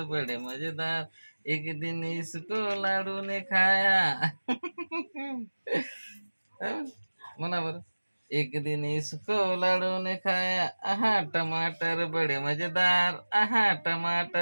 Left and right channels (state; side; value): inverted; both; correlation -1.00